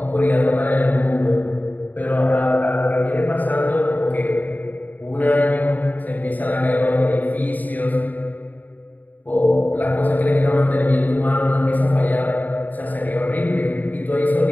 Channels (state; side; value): late; right; 0.083 ms